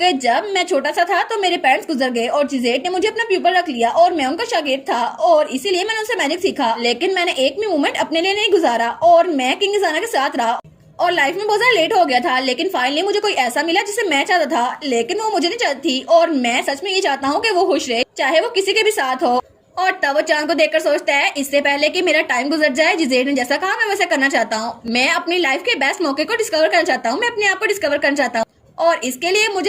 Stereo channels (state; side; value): identical; both; correlation 1.00